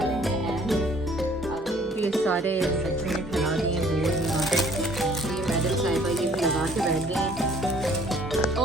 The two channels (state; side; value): normal; both; correlation 0.57